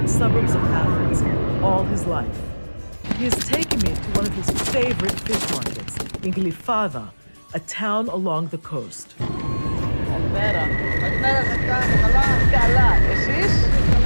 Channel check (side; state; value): both; inverted; correlation -1.00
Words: suburbs of Athens all his life. He has taken me to one of his favorite fish markets, in Glyfada, a town along the coast.